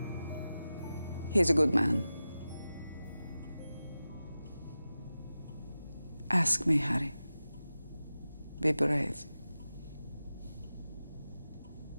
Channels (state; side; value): inverted; both; correlation -0.94